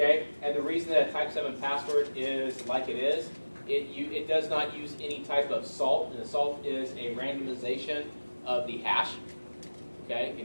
And the reason that a type 7 password is like it is, it does not use any type of salt, and the salt is a randomization of the hash, okay,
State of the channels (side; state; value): both; inverted; correlation -1.00